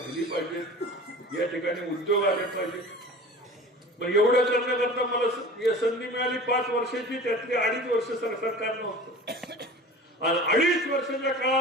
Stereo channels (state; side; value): normal; both; correlation 0.39